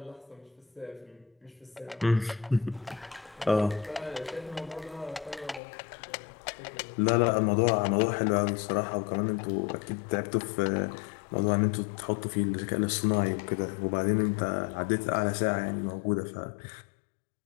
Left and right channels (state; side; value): drops out; right; at 5.6 s